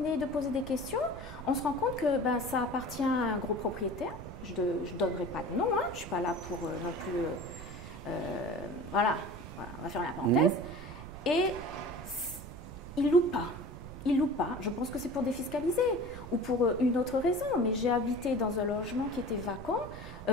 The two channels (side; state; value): right; noise; rumble, 12 dB below the sound